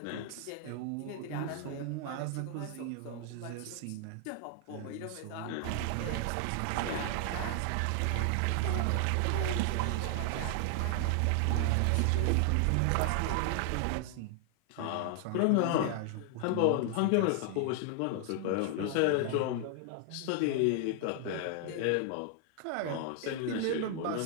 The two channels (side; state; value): both; different; correlation 0.00